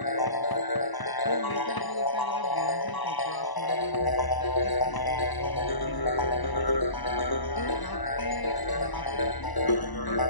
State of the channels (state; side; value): late; right; 1.0 ms